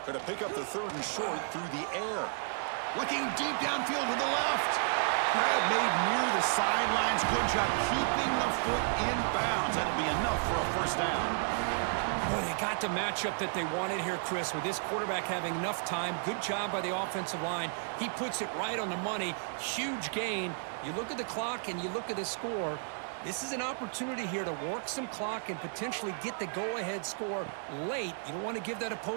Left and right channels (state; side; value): silent; left; digital silence